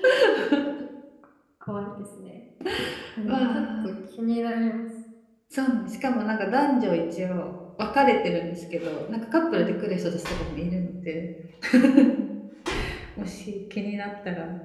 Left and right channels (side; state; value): both; identical; correlation 1.00